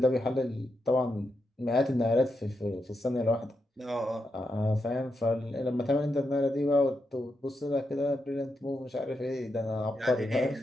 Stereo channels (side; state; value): both; normal; correlation 0.84